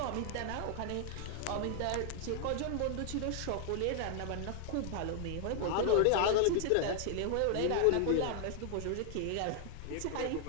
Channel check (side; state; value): both; different; correlation 0.00